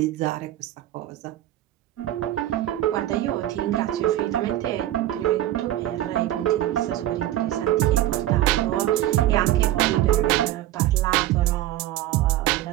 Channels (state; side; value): quieter; left; 13.8 dB